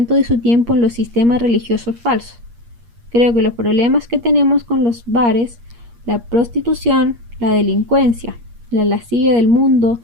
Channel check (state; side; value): late; left; 8.5 ms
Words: de su tiempo en los sistemas religiosos falsos. Creo que los problemas que tenemos con los bares, la prostitución, la delincuencia, la lascivia del mundo